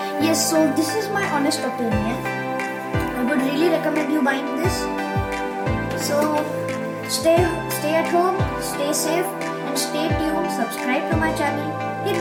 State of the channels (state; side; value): identical; both; correlation 1.00